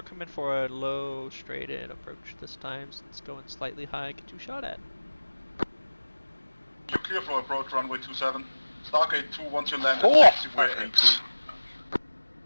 coming for a low, straight in approach this time, since it's going slightly high. Get you shot at. You're clear for approach, runway 27. Stargate 2, once you land at Oh, taxiway A2.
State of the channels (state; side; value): inverted; both; correlation -1.00